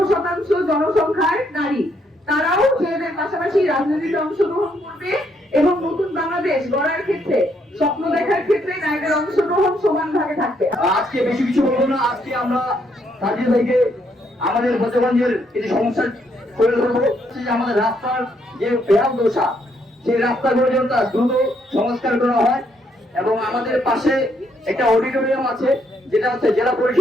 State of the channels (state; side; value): normal; both; correlation 0.73